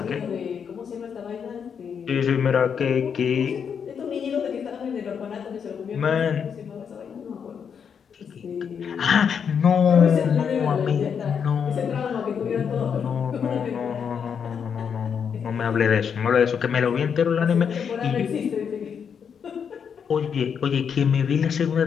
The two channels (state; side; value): quieter; right; 7.1 dB